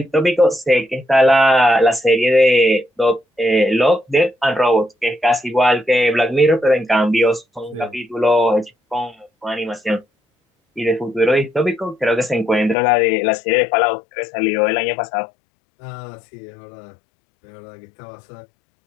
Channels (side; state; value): right; drops out; at 12.8 s